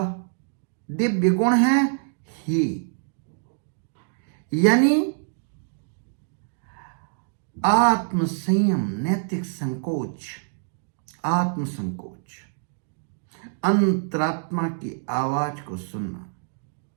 दिव्य गुण है ही, यानी आत्म संयम, नैतिक संकोच, आत्म संकोच, अंतरात्मा की आवाज को सुनना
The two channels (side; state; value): left; silent; digital silence